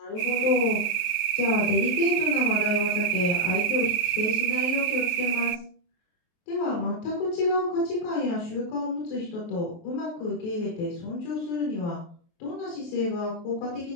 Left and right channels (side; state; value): right; late; 23 ms